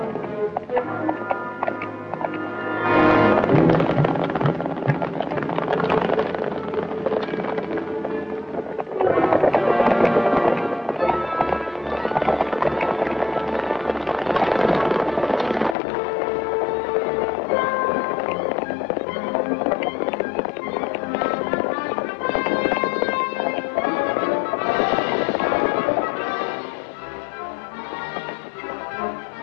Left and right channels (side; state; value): right; drops out; at 15.8 s